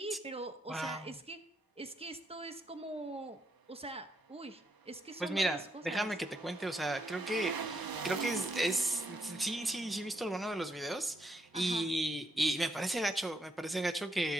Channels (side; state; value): both; normal; correlation 0.76